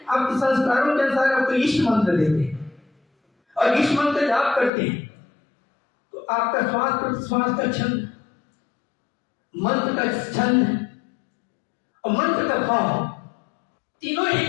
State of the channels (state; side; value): drops out; right; at 4.7 s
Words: आपके संस्कारों के अनुसार आपको इष्ट मंत्र देते हैं और इष्ट मंत्र जाप करते हैं तो आपका श्वास प्रश्वास का छंद, मंत्र का छंद और मंत्र का भाव तीनों एक